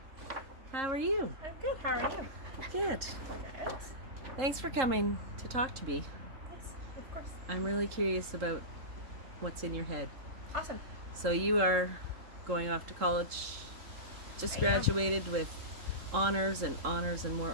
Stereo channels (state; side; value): late; left; 3.7 ms